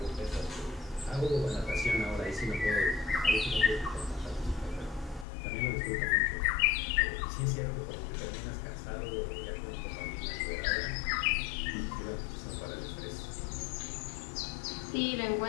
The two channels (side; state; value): right; drops out; at 5.2 s